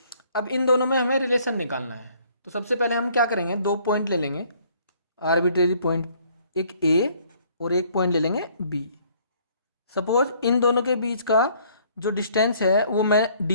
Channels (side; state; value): both; inverted; correlation -0.61